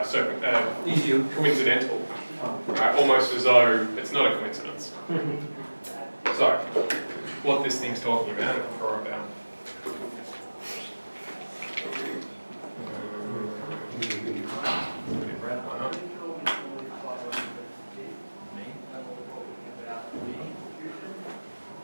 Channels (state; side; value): inverted; both; correlation -1.00